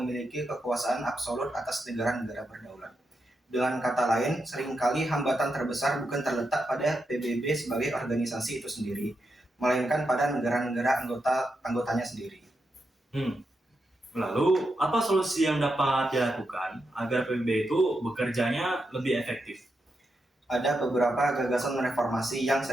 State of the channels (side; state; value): both; normal; correlation 0.85